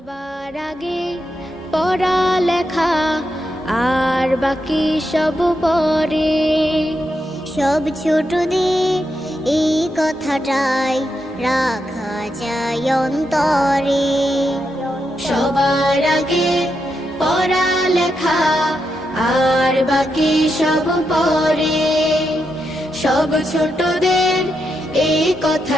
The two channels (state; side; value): normal; both; correlation 0.84